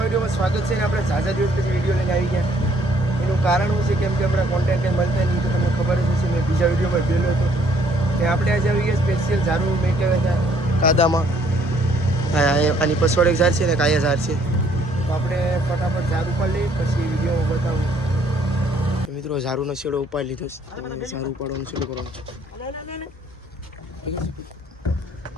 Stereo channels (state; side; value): normal; both; correlation 0.63